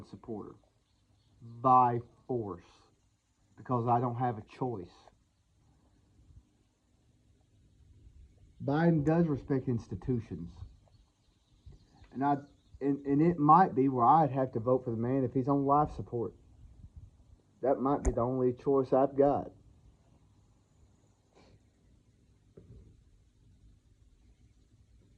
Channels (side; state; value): both; identical; correlation 1.00